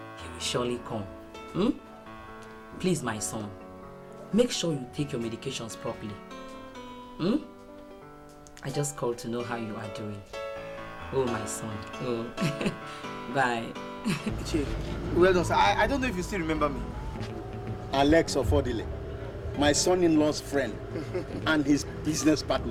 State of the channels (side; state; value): both; identical; correlation 1.00